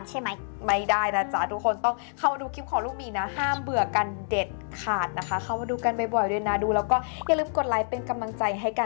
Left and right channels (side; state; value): right; silent; digital silence